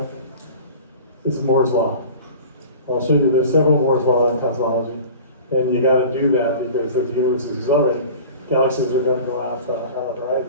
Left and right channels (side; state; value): both; inverted; correlation -0.39